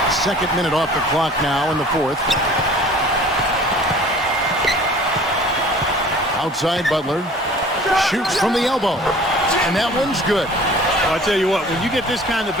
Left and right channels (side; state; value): both; normal; correlation 0.47